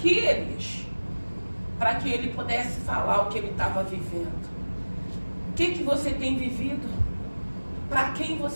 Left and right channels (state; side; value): inverted; both; correlation -1.00